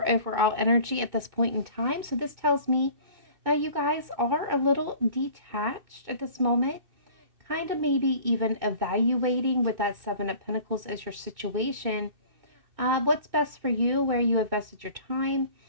overall energy at this point in time. So this tells me that you guys are a little detached at this moment, kind of maybe even evaluating with that Seven of Pentacles as your situation, what's best for you, where you invested your time.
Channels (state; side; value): late; left; 2.6 ms